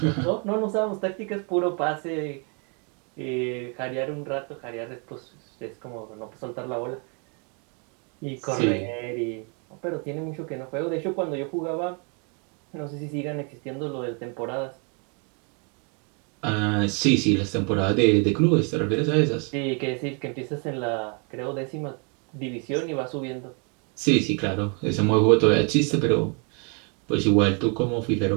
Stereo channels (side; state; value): left; quieter; 36.4 dB